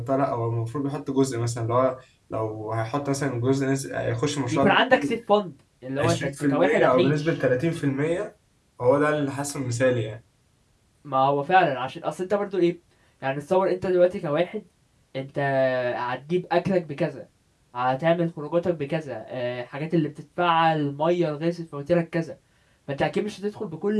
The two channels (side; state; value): both; identical; correlation 1.00